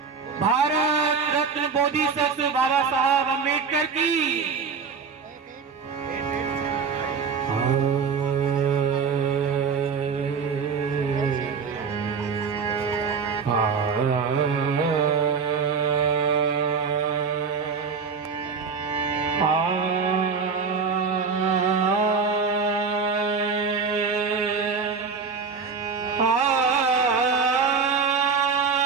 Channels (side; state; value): left; quieter; 5.5 dB